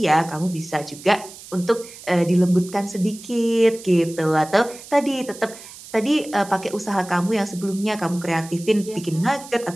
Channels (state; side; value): noise; right; hiss, 17 dB below the sound